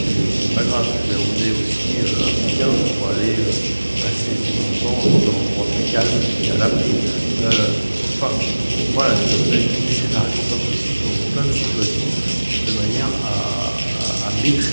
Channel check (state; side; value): inverted; both; correlation -1.00